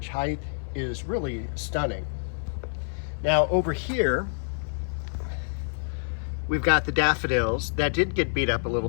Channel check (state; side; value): silent; right; 60 dB below the other